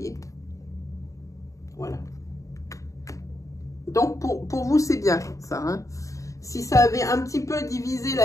Voilà. Donc, pour vous, c'est bien, ça. Hein. Si ça avait un petit peu divisé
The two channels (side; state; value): right; late; 0.16 ms